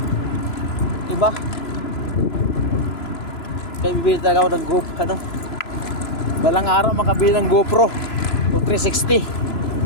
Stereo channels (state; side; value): late; right; 3.0 ms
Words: iba. Kaya bibili talaga ako ng GoPro, balang araw makabili ng GoPro o 360.